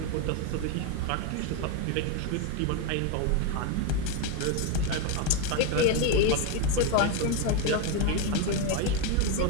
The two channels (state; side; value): different; both; correlation 0.02